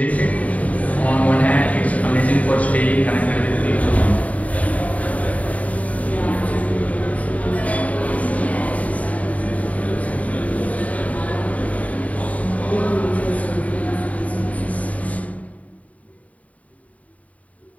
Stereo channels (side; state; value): right; late; 0.069 ms